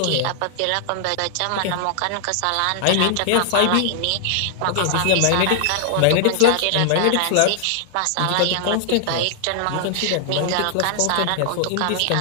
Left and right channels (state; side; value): different; both; correlation 0.00